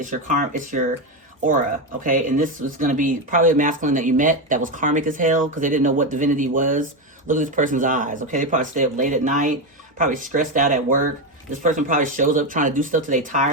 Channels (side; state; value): both; normal; correlation 0.11